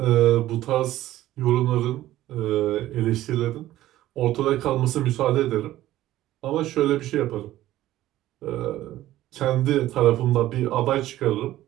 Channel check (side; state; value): left; quieter; 14.6 dB